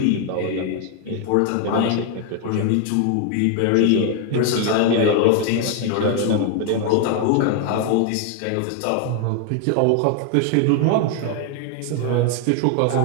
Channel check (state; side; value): different; both; correlation 0.00